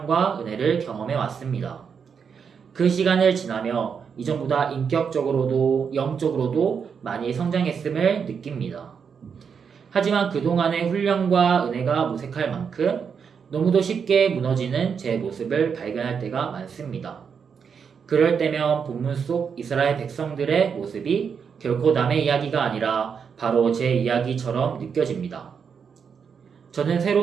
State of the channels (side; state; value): left; quieter; 6.6 dB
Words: 은혜를 경험해 왔습니다. 그 시간을 지나며 이전보다 인격적으로도 영적으로도 많이 성장했음을 느낍니다. 하지만 그동안의 훈련과 은혜가 무색할 만큼 너무도 쉽게 무너지는 제 모습을 발견할 때가 많습니다. 그럴 때면 본문 속 이스라엘 백성들의 모습이 결코 남의 이야기가 아니라 바로 제 이야기처럼 느껴집니다. 저는